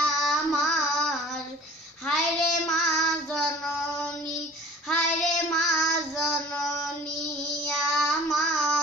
আমার, হায়রে মা জননী, হায়রে মা জননী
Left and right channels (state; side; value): normal; both; correlation 0.46